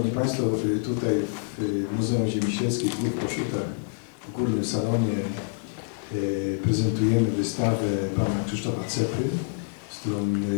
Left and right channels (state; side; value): silent; right; digital silence